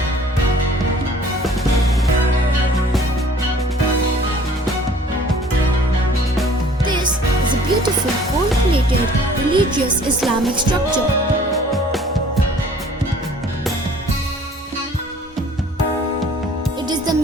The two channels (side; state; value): both; normal; correlation 0.53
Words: sophisticated religious Islamic structure. It is the